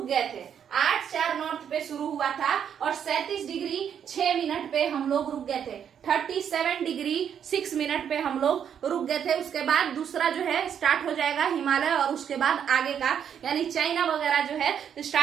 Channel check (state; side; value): quieter; left; 8.5 dB